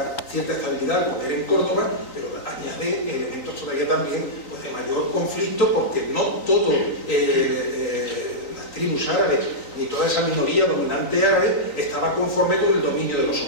cierta estabilidad al poder en Córdoba, pero añade elementos todavía también pues, de mayor conflicto, porque no todo las tribus árabes ni toda esa minoría dominante árabe estaba conforme con el dominio de los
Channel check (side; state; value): right; late; 3.8 ms